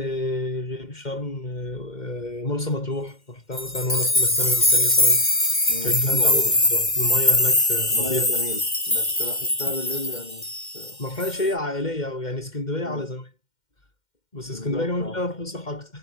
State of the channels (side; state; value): right; late; 2.1 ms